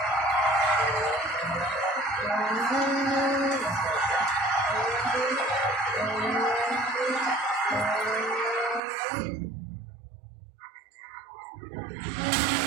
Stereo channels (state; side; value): drops out; left; at 8.8 s